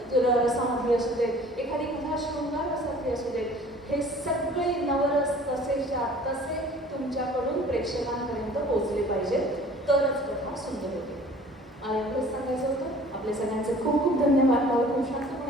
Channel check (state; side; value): normal; both; correlation 0.49